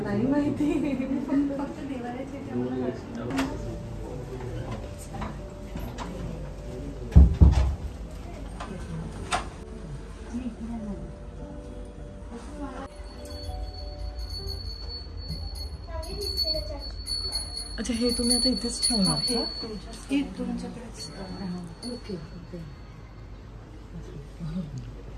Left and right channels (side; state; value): both; identical; correlation 1.00